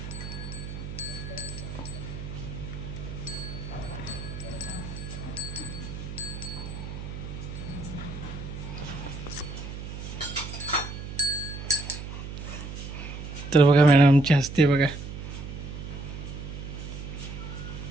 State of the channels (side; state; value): right; noise; hum, 8 dB below the sound